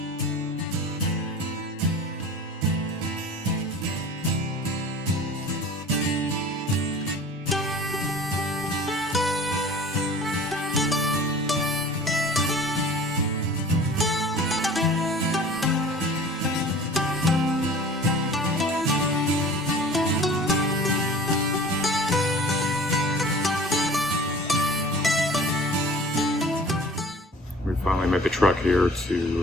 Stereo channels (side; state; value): both; normal; correlation 0.44